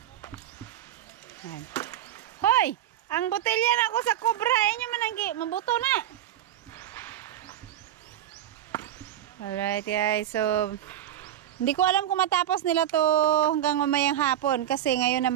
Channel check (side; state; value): left; quieter; 11.7 dB